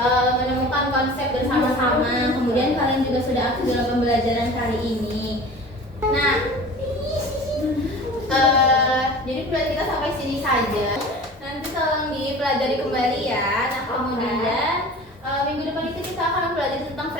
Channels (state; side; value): normal; both; correlation 0.40